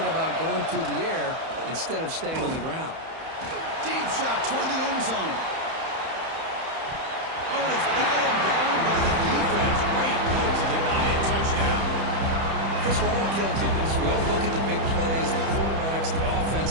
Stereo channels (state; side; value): late; left; 31 ms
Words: about going through the air instead of staying on the ground. Deep shot toward the end zone. Oh, and it's batted down by the defense. Great move to deny a touchdown. Chris, we're all guilty of this. We all look at the big plays, the quarterbacks, the